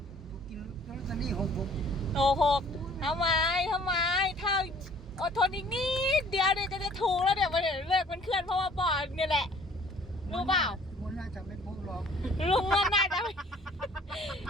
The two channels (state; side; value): normal; both; correlation 0.55